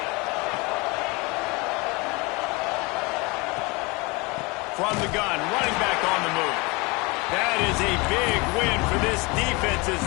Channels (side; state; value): right; quieter; 26.6 dB